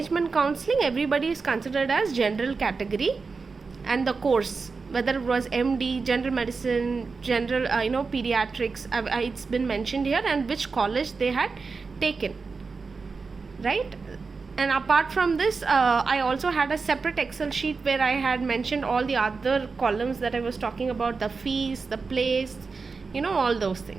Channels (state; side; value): quieter; left; 4.6 dB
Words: counseling, everybody is considered as general category, and the course, whether it was MD, general medicine, general pediatrics, it's been mentioned here, and which college they had taken, right? And apart from this, I also had a separate Excel sheet where I had mentioned all the other columns that I was talking about, the fees, the place, all those